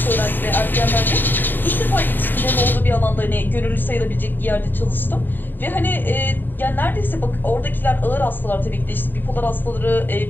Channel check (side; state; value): right; late; 0.092 ms